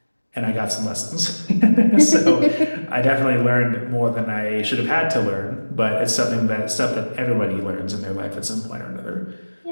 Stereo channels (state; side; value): inverted; both; correlation -1.00